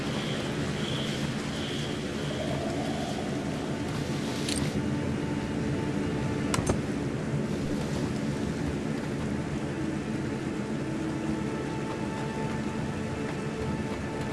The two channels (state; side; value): identical; both; correlation 1.00